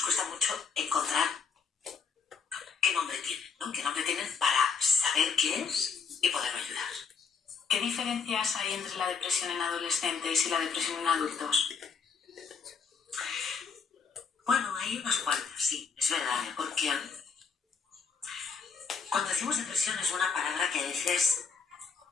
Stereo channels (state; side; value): quieter; right; 5.6 dB